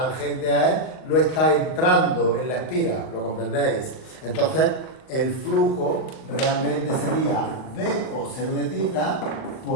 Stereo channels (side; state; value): right; late; 39 ms